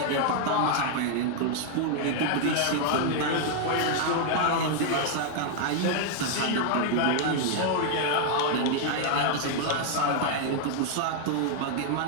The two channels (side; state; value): both; different; correlation 0.00